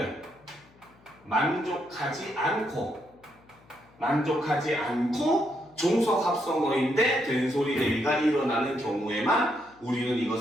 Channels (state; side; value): noise; left; hum, 29 dB below the sound